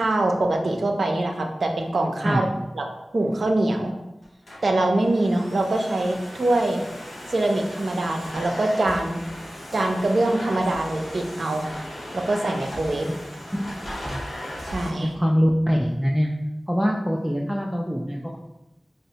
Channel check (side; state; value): both; normal; correlation 0.96